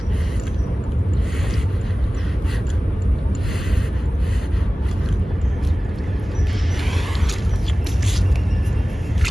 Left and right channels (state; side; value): normal; both; correlation 0.97